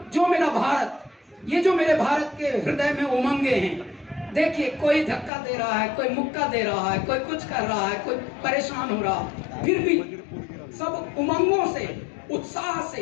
जो मेरा भारत, ये जो मेरे भारत के हृदय में उमंगे हैं, देखिए कोई धक्का दे रहा है, कोई मुक्का दे रहा है, कोई कुछ कर रहा है, कोई परेशान हो रहा है, फिर भी सब उमंगों से, उत्साह से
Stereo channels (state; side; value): drops out; right; at 5.3 s